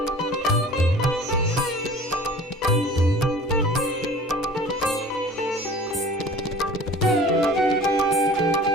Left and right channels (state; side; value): normal; both; correlation 0.44